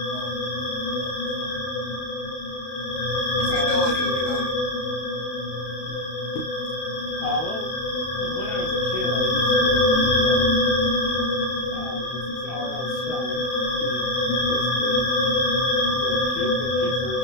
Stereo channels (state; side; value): late; right; 32 ms